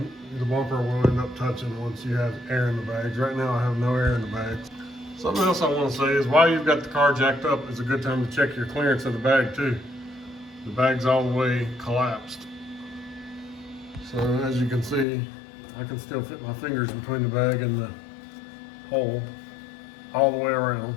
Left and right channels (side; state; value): right; drops out; at 15.1 s